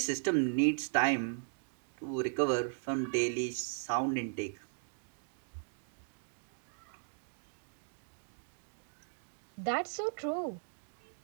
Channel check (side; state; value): left; silent; digital silence